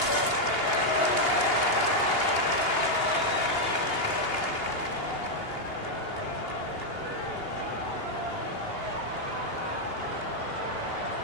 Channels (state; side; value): late; right; 2.8 ms